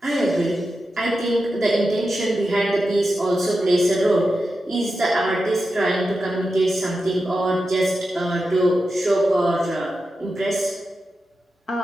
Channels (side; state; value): both; normal; correlation 0.90